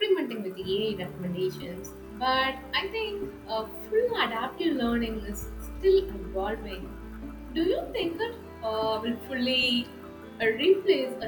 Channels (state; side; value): identical; both; correlation 1.00